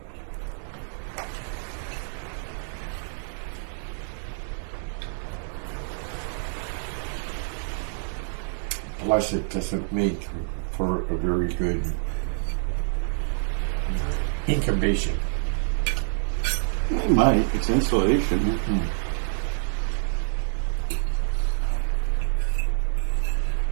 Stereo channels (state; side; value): silent; left; 60 dB below the other